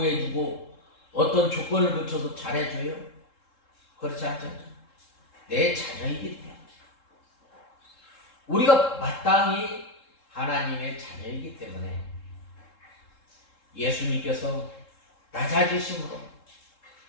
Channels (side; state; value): right; late; 3.7 ms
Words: 어떤 조건을 붙여서 잘해줘요? 그렇지 않죠? 내 자녀이기 때문에 우리가 마땅히 하나님의 자녀이기 때문에 예수님께서 낮아지심으로